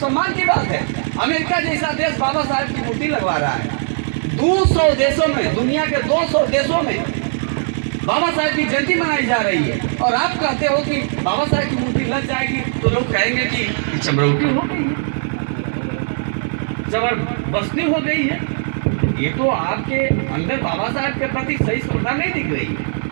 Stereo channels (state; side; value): silent; left; digital silence